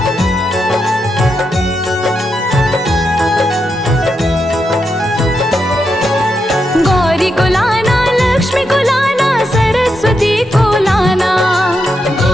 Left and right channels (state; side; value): normal; both; correlation 0.84